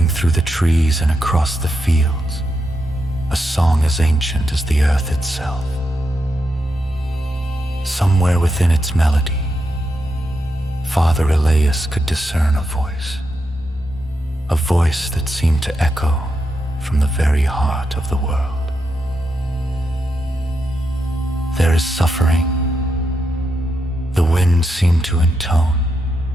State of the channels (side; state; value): both; normal; correlation 0.84